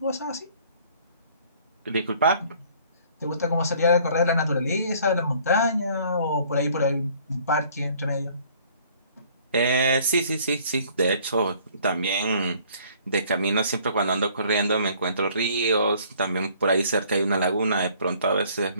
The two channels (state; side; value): inverted; both; correlation -0.57